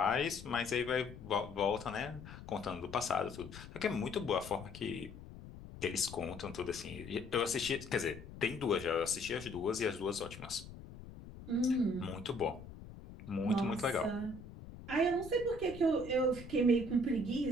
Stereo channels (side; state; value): left; noise; rumble, 14 dB below the sound